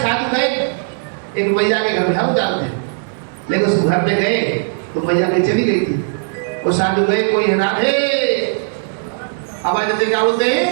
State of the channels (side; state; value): left; silent; digital silence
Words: गए एक मैया के घर में, हम जानते हैं, लेकिन उस घर में गए तो मैया कहीं चली गई थी। वो साधु गए, कोई है राधे, आवाज देते क्या बोलते हैं,